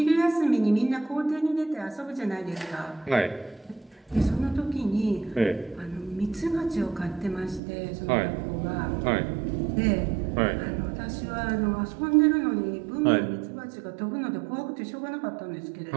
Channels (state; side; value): drops out; left; at 7.6 s